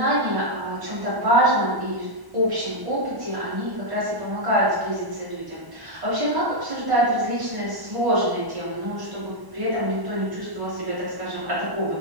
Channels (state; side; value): late; left; 1.1 ms